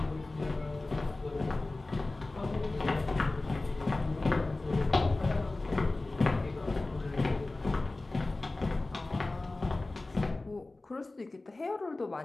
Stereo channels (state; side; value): quieter; right; 3.1 dB